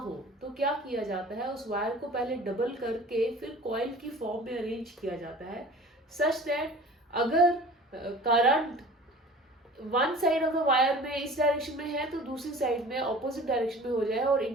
तो क्या किया जाता है, उस वायर को पहले डबल करके फिर कॉइल की फॉर्म में अरेंज किया जाता है, सच दैट अगर current one side of the wire में इस डायरेक्शन में है तो दूसरी साइड में ऑपोजिट डायरेक्शन में हो जाए और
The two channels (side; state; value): both; normal; correlation 0.43